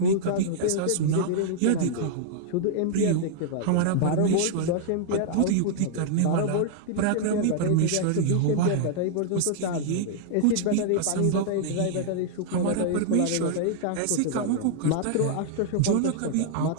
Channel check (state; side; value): different; both; correlation -0.01